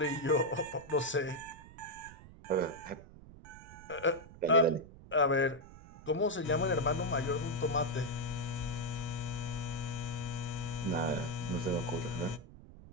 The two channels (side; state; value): right; noise; rumble, 18 dB below the sound